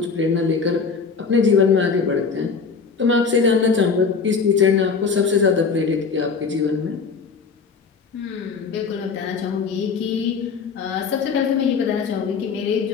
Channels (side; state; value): right; quieter; 5.3 dB